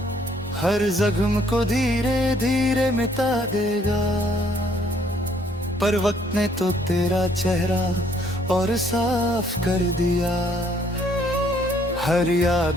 हर जख्म को धीरे धीरे मिटा देगा, पर वक्त ने तो तेरा चेहरा और साफ कर दिया, हर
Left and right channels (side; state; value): both; normal; correlation 0.65